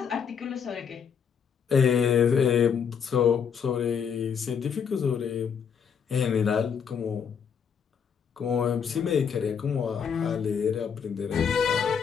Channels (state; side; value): quieter; right; 7.1 dB